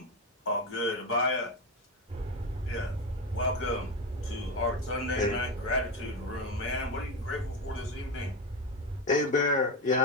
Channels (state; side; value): normal; both; correlation 0.16